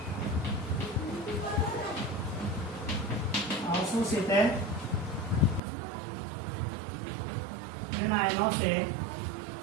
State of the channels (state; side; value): drops out; left; at 5.6 s